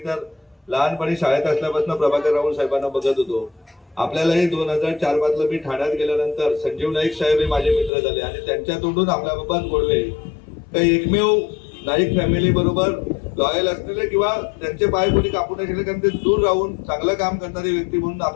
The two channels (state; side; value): drops out; right; at 7.9 s